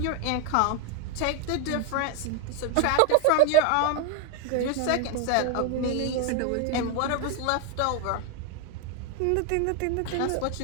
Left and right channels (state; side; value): different; both; correlation 0.01